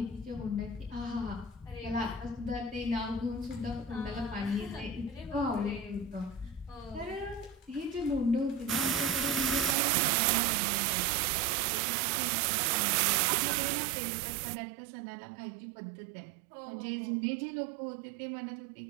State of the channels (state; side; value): drops out; left; at 9.8 s